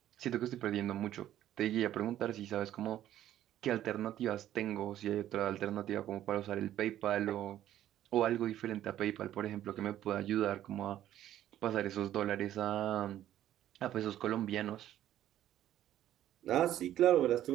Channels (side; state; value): left; quieter; 12.3 dB